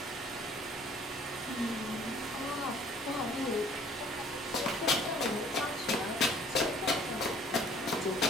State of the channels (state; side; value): normal; both; correlation 0.55